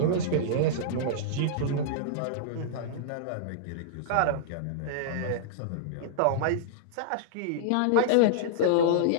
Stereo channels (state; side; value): different; both; correlation -0.02